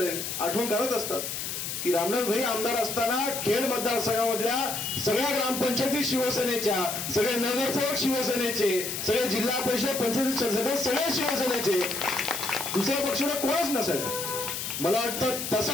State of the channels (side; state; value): left; noise; hiss, 4 dB below the sound